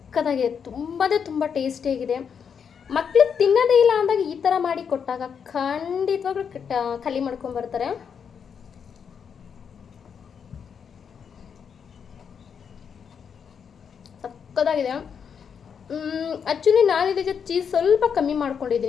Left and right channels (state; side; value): quieter; right; 7.0 dB